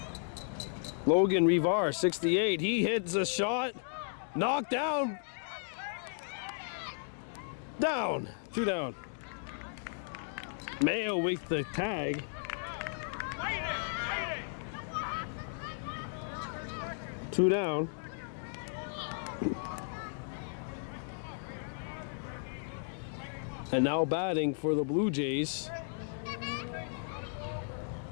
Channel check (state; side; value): silent; right; digital silence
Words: Logan Rivar, 68. He hits a shot. Knocked down. Down. 2 down. Mayo with the tag. Two down. And now batting for the Blue Jays